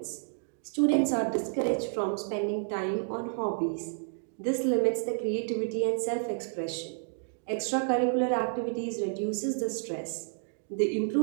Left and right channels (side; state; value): left; silent; digital silence